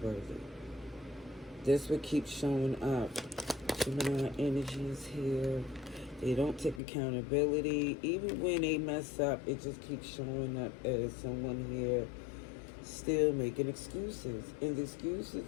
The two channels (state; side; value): drops out; right; at 6.8 s